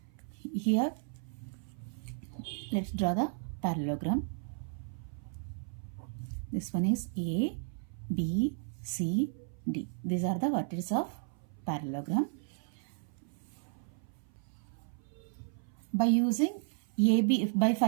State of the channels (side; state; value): left; silent; 55 dB below the other